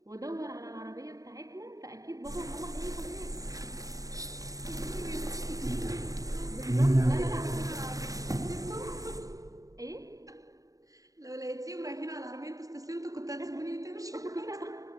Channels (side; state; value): left; late; 0.17 ms